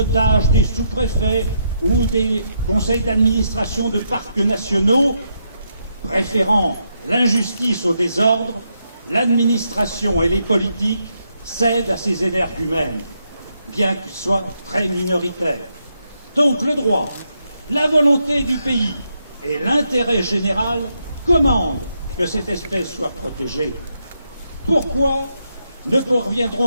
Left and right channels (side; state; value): both; inverted; correlation -0.80